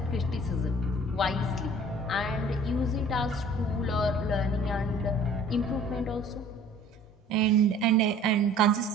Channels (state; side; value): normal; both; correlation 0.50